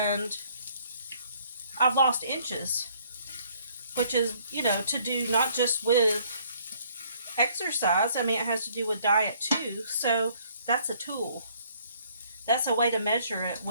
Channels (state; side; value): inverted; both; correlation -0.62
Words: I've lost inches, which is, you know, to do not just with exercise. I mean, it has to do with diet too. So that's a tool. That's a way to measure it